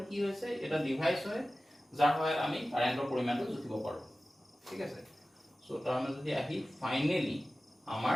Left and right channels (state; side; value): normal; both; correlation 0.96